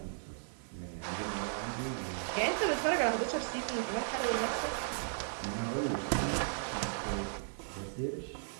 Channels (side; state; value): left; silent; digital silence